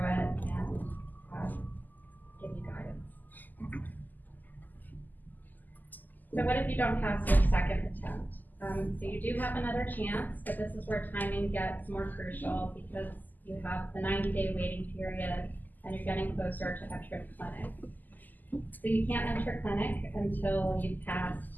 it, and So what if you don't pass your second attempt? So you do have another chance, but this is where timing gets more crucial because you have the 90-day waiting period and you're getting closer to entering clinic. So you can't enter clinic until you've passed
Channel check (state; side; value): late; right; 0.085 ms